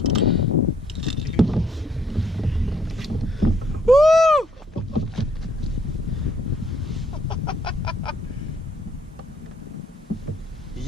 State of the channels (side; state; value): both; normal; correlation 0.67